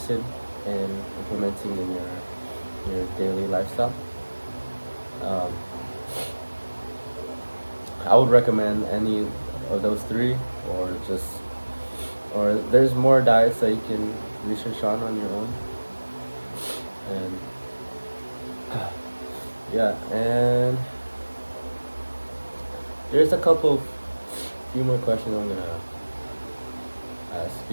in implementing in your daily lifestyle, I would recommend any of those three, or there's more diets that you can research on your own, and yeah, and there's few more questions I'm gonna ask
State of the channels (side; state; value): both; inverted; correlation -1.00